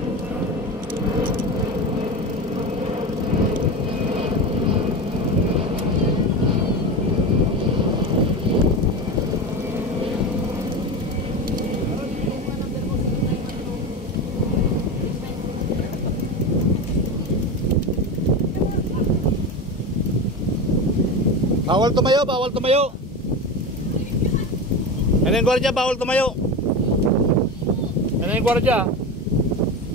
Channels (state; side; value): normal; both; correlation 0.23